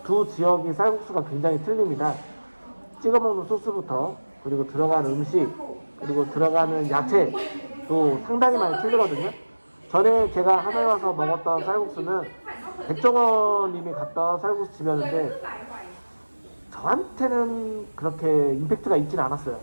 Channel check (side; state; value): both; inverted; correlation -1.00